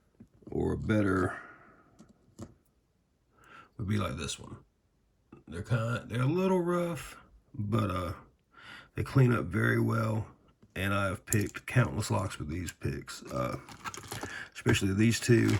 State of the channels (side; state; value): both; identical; correlation 1.00